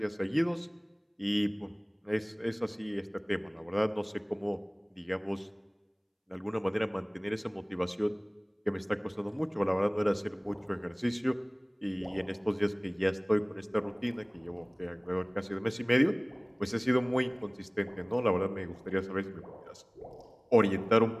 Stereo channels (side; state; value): both; identical; correlation 1.00